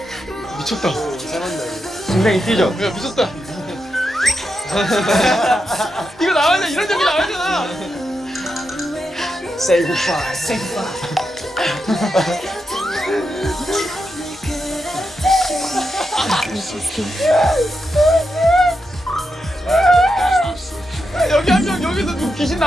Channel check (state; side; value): normal; both; correlation 0.86